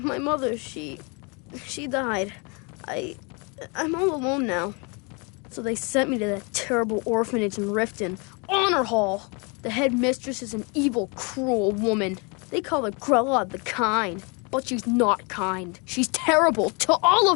mother, she died. I'm all alone now. So they sent me to that terrible orphanage in Riften, Honor Hall. The headmistress is an evil, cruel woman. They call her Grella the Kind, but she's not kind. She's terrible to all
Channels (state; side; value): quieter; right; 32.0 dB